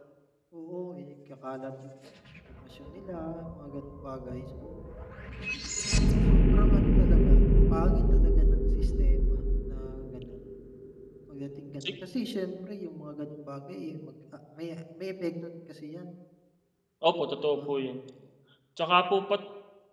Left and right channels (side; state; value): both; identical; correlation 1.00